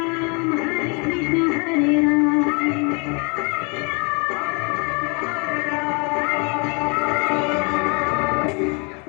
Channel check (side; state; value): right; quieter; 33.3 dB